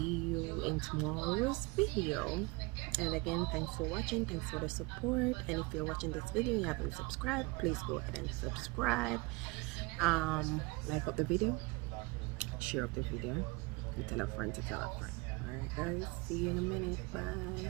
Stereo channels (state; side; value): quieter; left; 25.8 dB